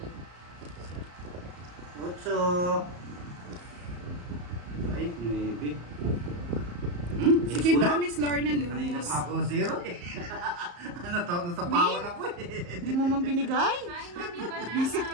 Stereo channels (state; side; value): late; left; 34 ms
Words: Butso! Ay, maybe. Sige ba, Miss Lorna Kanina Luz? pa ako zero eh. Ano to? Nasapawan ako eh. Hindi mo man binigay? Hi, Mami Banana. Visit